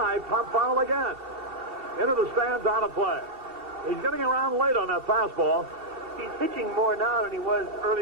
pop foul again. Into the stands, out of play. He's getting around late on that fastball. He's pitching more now than he was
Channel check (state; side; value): late; left; 2.7 ms